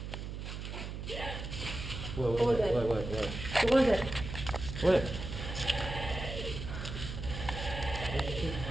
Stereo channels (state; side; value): noise; right; hum, 7 dB below the sound